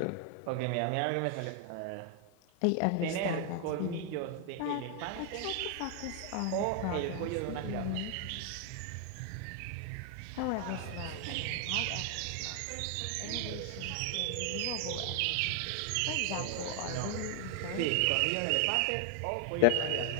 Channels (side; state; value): both; different; correlation 0.00